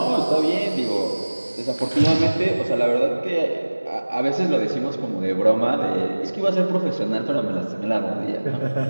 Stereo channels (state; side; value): inverted; both; correlation -1.00